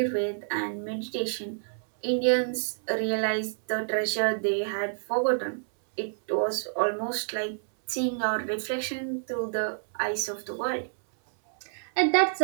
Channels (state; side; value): silent; left; 59 dB below the other